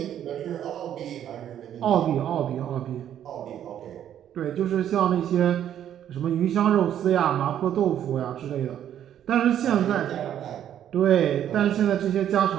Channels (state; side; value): quieter; left; 10.4 dB